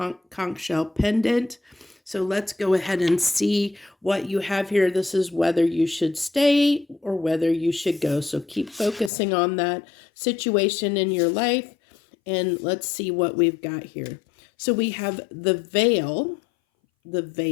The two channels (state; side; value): drops out; right; at 9.1 s